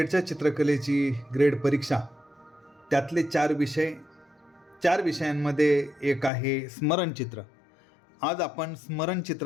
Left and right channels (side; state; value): right; drops out; at 6.3 s